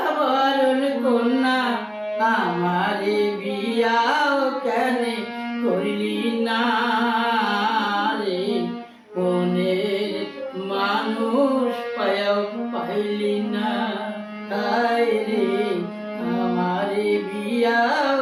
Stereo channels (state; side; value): identical; both; correlation 1.00